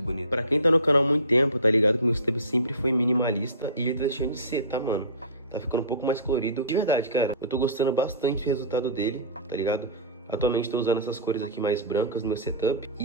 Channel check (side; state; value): both; inverted; correlation -0.32